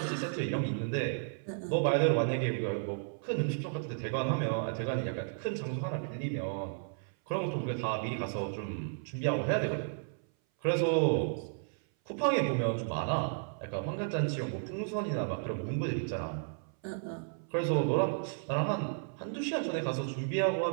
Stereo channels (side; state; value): left; silent; 56 dB below the other